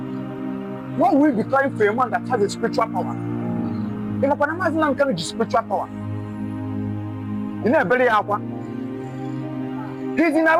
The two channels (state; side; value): identical; both; correlation 1.00